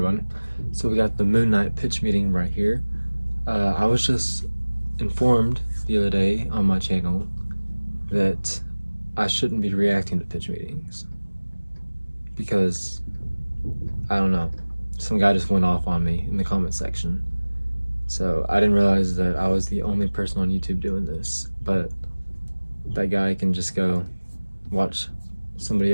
So we got the Moon Knight pitch meeting right here. I was just informed the other day on my channel that I shouldn't be reacting to pitch meetings because, I don't know, some guy just went off on me in the comment section. So I didn't realize that I was the only person on YouTube doing this, but that guy can just go watch somebody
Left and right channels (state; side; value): inverted; both; correlation -1.00